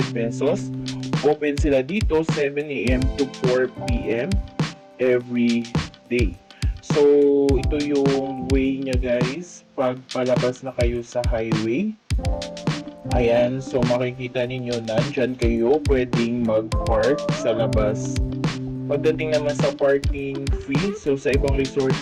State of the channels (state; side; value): identical; both; correlation 1.00